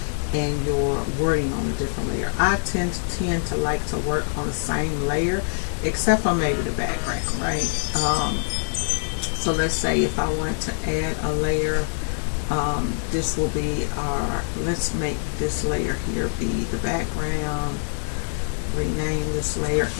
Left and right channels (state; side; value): silent; right; digital silence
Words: and your wording on a different layer. I tend to like to work on the same layer, except for maybe the background, right? So let's say if I wanted to add a layer, this will be our, let's make this layer here be the background, rename this layer